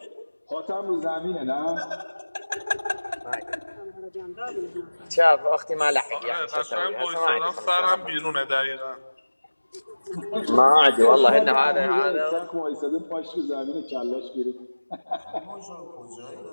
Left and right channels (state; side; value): inverted; both; correlation -1.00